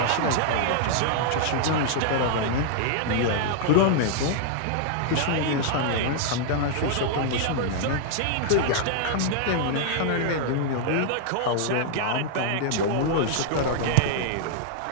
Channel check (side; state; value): both; different; correlation -0.01